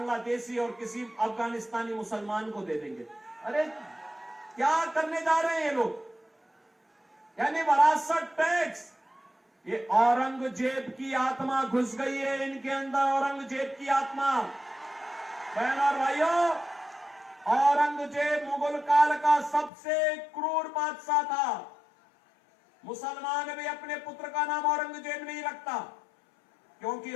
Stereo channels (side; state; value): right; drops out; at 19.7 s